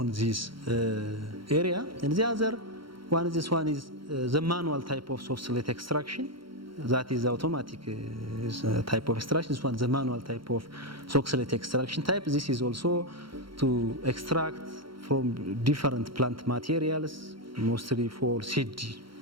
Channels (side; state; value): left; late; 0.73 ms